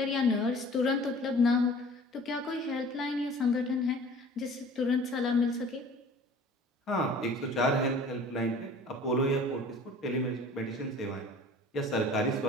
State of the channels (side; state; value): both; normal; correlation 0.46